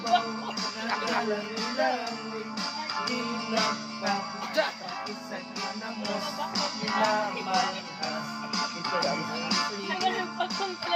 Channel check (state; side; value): identical; both; correlation 1.00